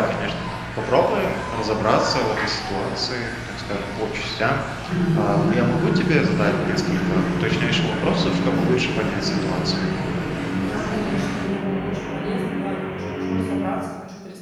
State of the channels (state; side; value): identical; both; correlation 1.00